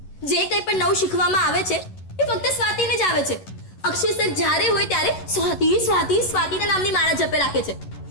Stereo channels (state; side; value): late; right; 11 ms